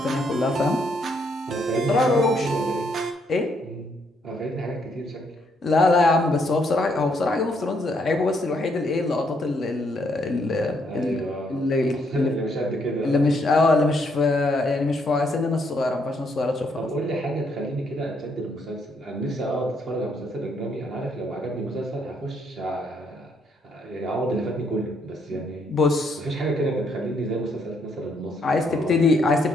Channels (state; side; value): normal; both; correlation 0.72